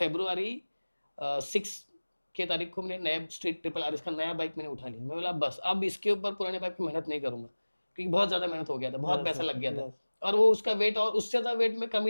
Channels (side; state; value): both; inverted; correlation -1.00